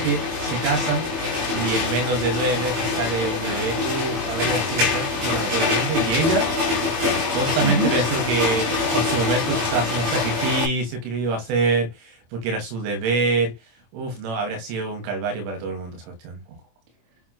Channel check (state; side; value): late; left; 24 ms